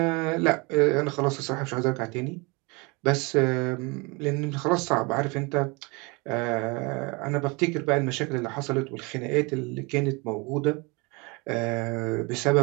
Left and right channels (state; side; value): quieter; left; 28.0 dB